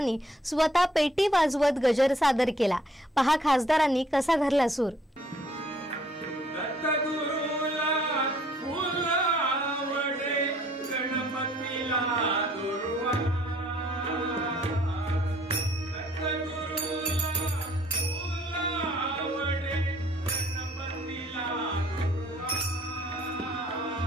स्वतः पेटी वाजवत गजर सादर केला। पहा खासदारांनी कसा धरला सूर।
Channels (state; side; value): normal; both; correlation 0.61